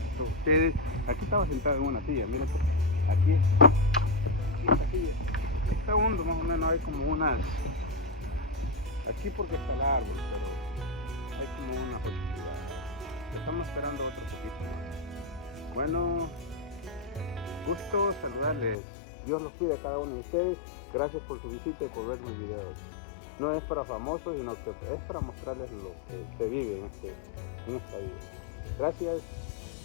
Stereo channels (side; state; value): right; drops out; at 18.8 s